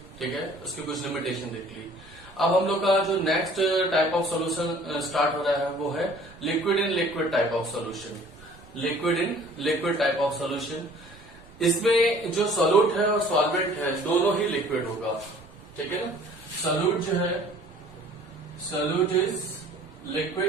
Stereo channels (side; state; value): right; noise; rumble, 22 dB below the sound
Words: ठीक है, उसकी कुछ लिमिटेशन देख ली। अब हम लोग का जो next type of solution start हो रहा है वो है liquid in liquid type of solution. Liquid in liquid type of solution, इसमें जो सॉल्यूट है और सॉल्वेंट है दोनों ही लिक्विड होगा, ठीक है ना। सॉल्यूट जो है, सॉल्यूट इज